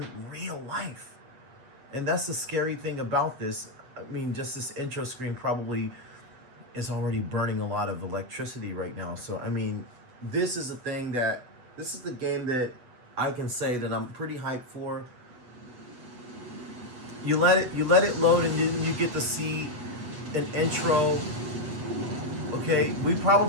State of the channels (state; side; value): late; left; 8.2 ms